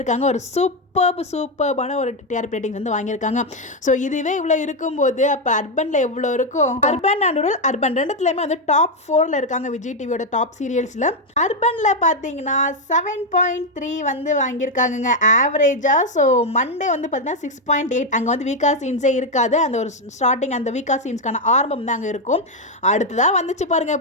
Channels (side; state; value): both; normal; correlation 0.04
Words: ஒரு சூப்பர்பான ஒரு டிஆர்பி ரேட்டிங்ஸ் வந்து வாங்கியிருக்காங்க. ஸோ இதுவே இவ்வளோ இருக்கும்போது அப்போ அர்பனில் எவ்வளோ இருக்கும்? அர்பன் அண்ட் ரூரல், அர்பன் ரெண்டுத்துலையுமே வந்து டாப் 4ல் இருக்காங்க விஜய் டிவியோட டாப் சீரியல்ஸில். அர்பனில் பார்த்தீங்கன்னா 7.3 வந்து வாங்கியிருக்காங்க ஆவரேஜாக. ஸோ மண்டே வந்து பார்த்தீங்கன்னா 6.8. அங்கே வந்து வீக்கா சீன்ஸே இருக்காது. அந்த ஒரு ஸ்டார்டிங் அந்த வீக்கா சீன்ஸ்க்கான ஆரம்பம் தான் அங்கே இருக்கும். அடுத்ததாக வந்துச்சு பாருங்க